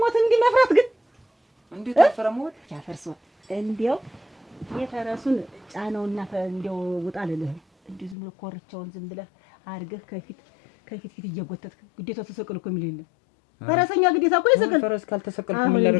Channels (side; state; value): right; drops out; at 8.2 s